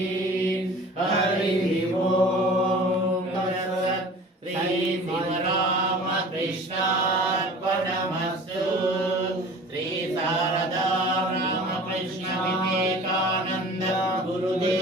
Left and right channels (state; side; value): normal; both; correlation 0.43